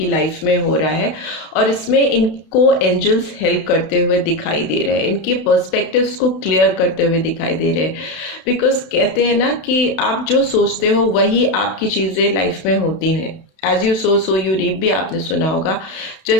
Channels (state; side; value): late; right; 32 ms